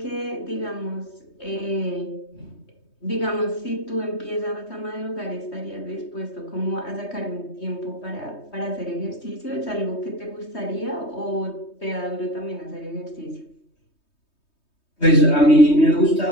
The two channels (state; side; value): late; right; 3.2 ms